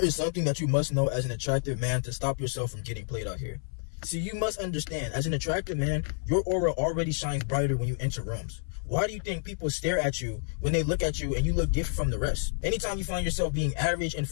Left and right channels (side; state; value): right; silent; 58 dB below the other